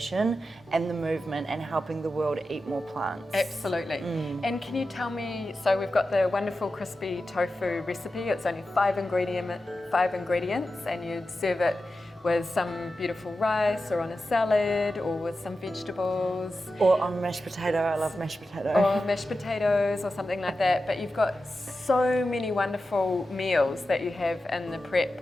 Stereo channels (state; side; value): normal; both; correlation 0.92